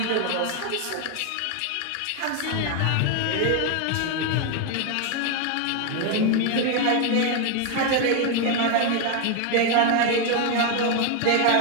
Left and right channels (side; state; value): both; different; correlation 0.01